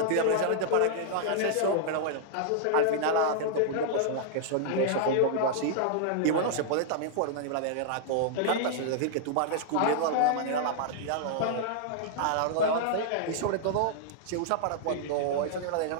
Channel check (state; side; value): different; both; correlation -0.01